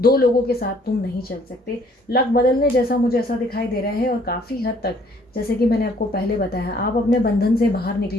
2 लोगों के साथ तुम नहीं चल सकते। लक बदलने जैसा मुझे ऐसा दिखाई दे रहा है और काफ़ी हद तक, जैसे कि मैंने आपको पहले बताया, आप अपने बंधन से बाहर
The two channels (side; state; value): both; normal; correlation 0.61